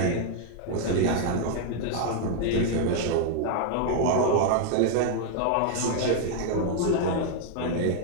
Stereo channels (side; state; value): both; different; correlation 0.00